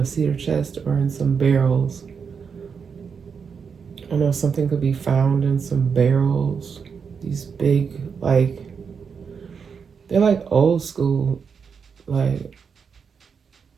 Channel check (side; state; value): left; quieter; 6.2 dB